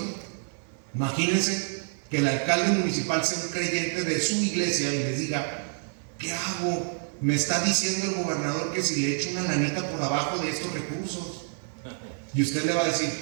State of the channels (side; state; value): left; silent; 60 dB below the other